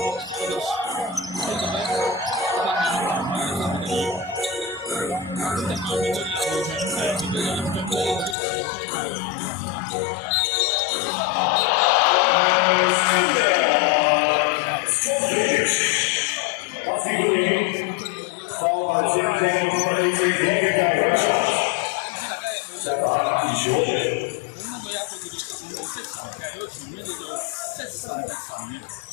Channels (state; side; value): drops out; right; at 8.3 s